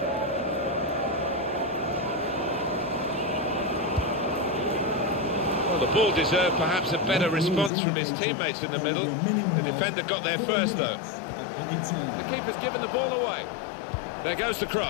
Well, the ball deserved perhaps a better response from his teammates in the middle. The defender got there first, though. The keeper's given the ball away. There goes the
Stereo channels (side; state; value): right; drops out; at 7.7 s